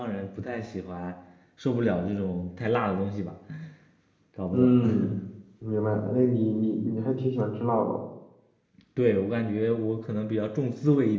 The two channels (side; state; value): both; identical; correlation 1.00